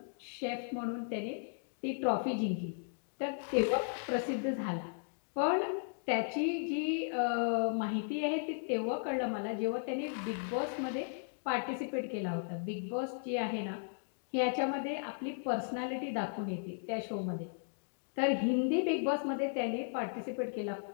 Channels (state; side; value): silent; right; digital silence